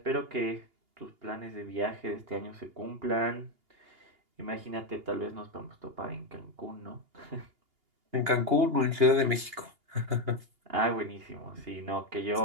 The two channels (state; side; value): late; left; 2.8 ms